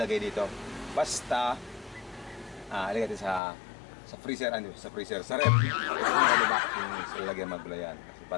dito. Basta, ilagay natin sa freezer, sa ref. Yung sa lagyan magbulayan. Kasi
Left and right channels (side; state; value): right; drops out; at 3.4 s